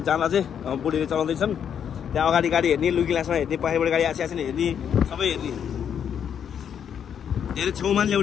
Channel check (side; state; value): right; quieter; 8.4 dB